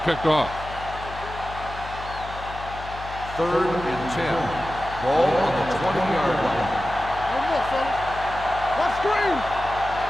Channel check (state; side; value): noise; left; hum, 12 dB below the sound